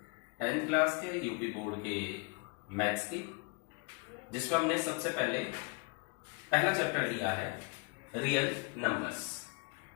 10th क्लास के यूपी बोर्ड के मैथ्स की, जिसमें हमने सबसे पहले पहला चैप्टर लिया है रियल नंबर्स।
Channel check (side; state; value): right; quieter; 31.7 dB